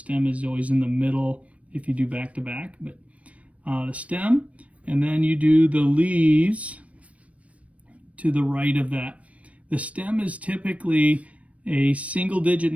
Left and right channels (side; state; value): left; late; 0.065 ms